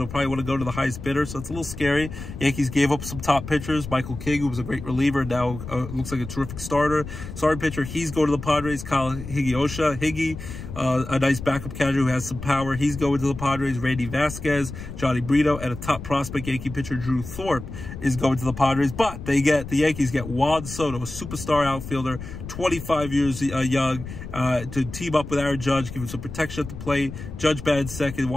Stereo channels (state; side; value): noise; left; rumble, 10 dB below the sound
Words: to probably want to go to the highest bidder, so it's a little scary. Yankees gave up some top pitchers. Michael King, who was a great reliever, now looks like a terrific starter. Starting pitcher, he's going to the Padres. Kyle Higgy, a nice backup catcher who has some power. He's going to the Padres. Randy Vasquez, Johnny Brito, and a top prospect Yankee pitcher, Drew Thorpe, is going to the Padres. But the Yankees get Juan Soto, a superstar outfielder, 25 years young, to team up with Aaron Judge, give him some protection at the plate. Judge batted second,